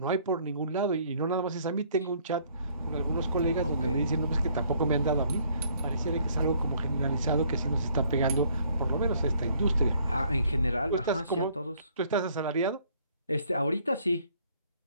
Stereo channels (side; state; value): both; inverted; correlation -0.63